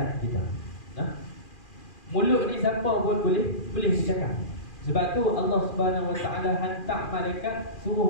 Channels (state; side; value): late; right; 2.4 ms